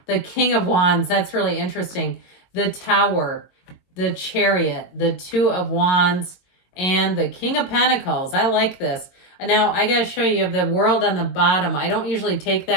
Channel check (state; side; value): late; right; 22 ms